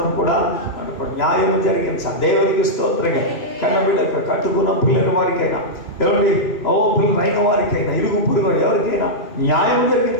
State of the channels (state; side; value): late; right; 3.0 ms